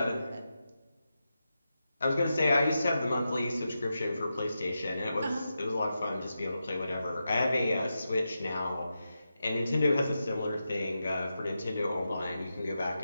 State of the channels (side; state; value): both; inverted; correlation -0.89